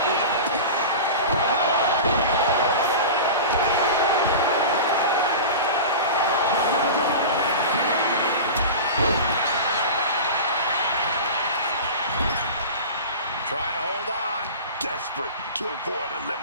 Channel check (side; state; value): both; inverted; correlation -0.30